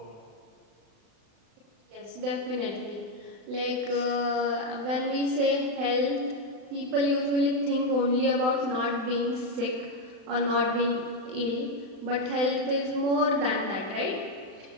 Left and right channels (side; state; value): left; late; 35 ms